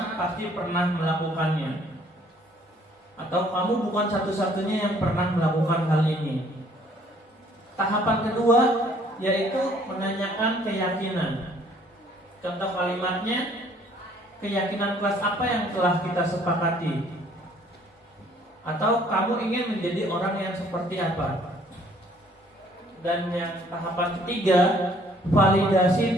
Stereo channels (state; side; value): normal; both; correlation 0.60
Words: pasti pernah melakukannya, atau kamu bukan satu-satunya yang pernah melakukan hal ini. Tahapan kedua yaitu menanyakan keyakinan. Contoh kalimatnya, keyakinan kelas apa yang telah kita sepakati, atau kamu ingin menjadi orang yang seperti apa. Dan yang tahapan ketiga, validasi